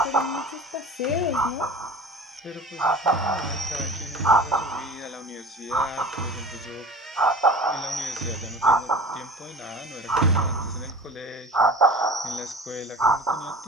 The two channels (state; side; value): normal; both; correlation 0.38